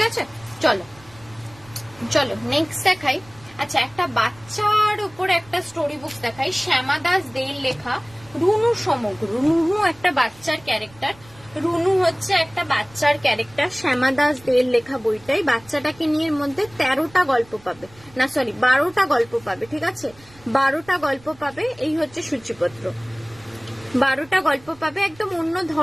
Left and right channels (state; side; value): noise; right; rumble, 25 dB below the sound